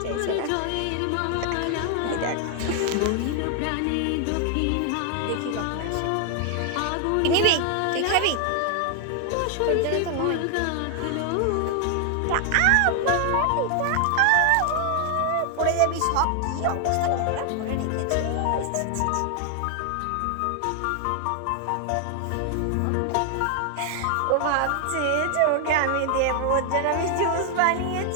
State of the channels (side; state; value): both; different; correlation 0.00